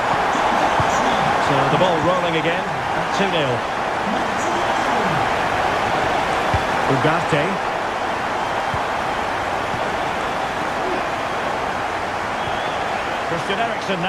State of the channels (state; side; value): identical; both; correlation 1.00